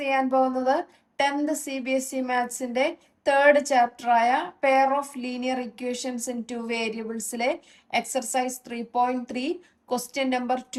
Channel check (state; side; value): identical; both; correlation 1.00